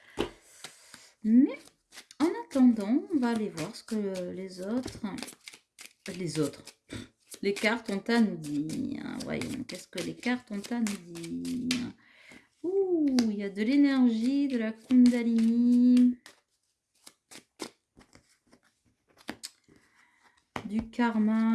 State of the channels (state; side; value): identical; both; correlation 1.00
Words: Mais en attendant, on va aller voir ce que les cartes ont à nous dire. Voyons, qu'est-ce que les cartes ont à nous dire. Ouh, il y a de l'énergie, de la Kundalini, du